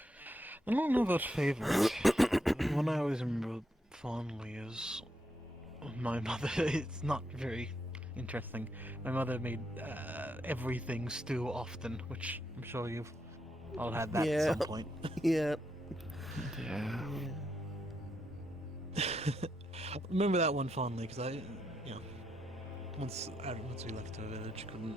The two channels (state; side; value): normal; both; correlation 0.81